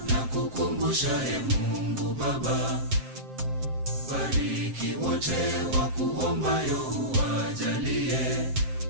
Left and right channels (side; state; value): left; late; 7.6 ms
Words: na kukumbusha, Mungu Baba, bariki wote wakuombayo uwajalie.